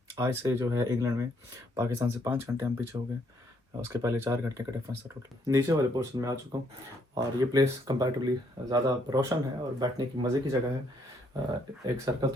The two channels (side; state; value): both; normal; correlation 0.70